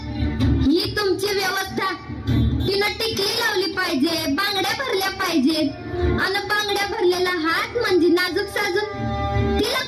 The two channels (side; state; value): both; identical; correlation 1.00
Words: ही तुमची व्यवस्था. तिनं टिकली लावली पाहिजे, बांगड्या भरल्या पाहिजेत. आणि बांगड्या भरलेला हात म्हणजे नाजूक साजूक. तिला